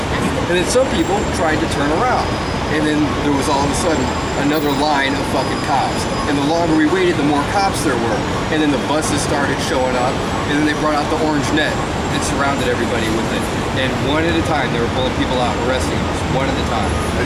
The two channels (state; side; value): identical; both; correlation 1.00